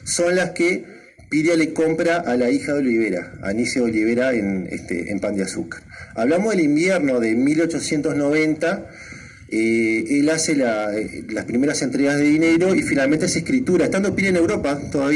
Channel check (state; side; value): identical; both; correlation 1.00